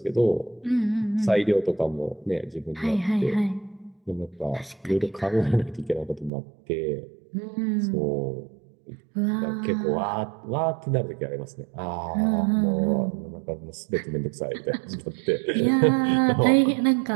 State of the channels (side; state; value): left; drops out; at 6.3 s